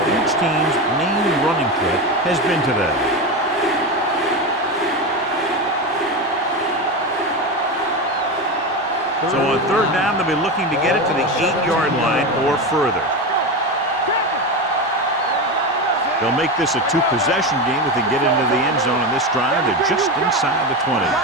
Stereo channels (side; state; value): both; normal; correlation 0.18